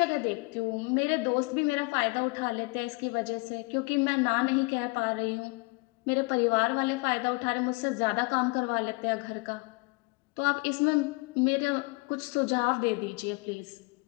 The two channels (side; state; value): right; quieter; 28.0 dB